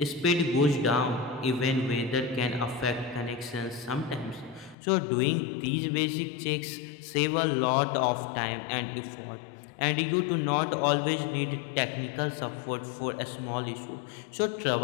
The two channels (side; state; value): right; drops out; at 4.8 s